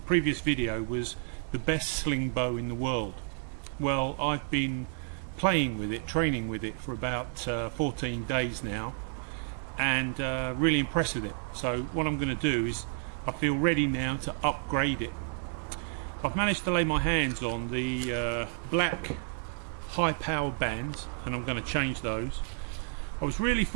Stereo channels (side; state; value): left; silent; 57 dB below the other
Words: previous video was the best slingbow in the world. Well, I've been playing with it, training with it for about 14 days now, and really impressed with it. So what I'm going to do is I feel ready now to upgrade it. I've managed to lay my hands on the black high power bands, and I'm going to change those. I was really